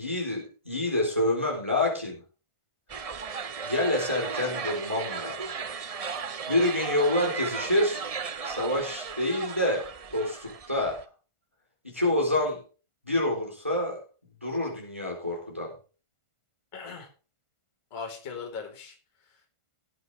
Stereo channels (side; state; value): left; late; 1.6 ms